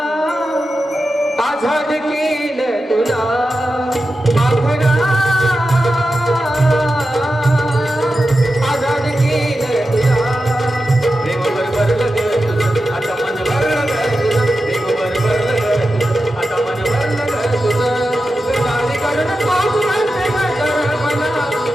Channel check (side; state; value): both; normal; correlation 0.91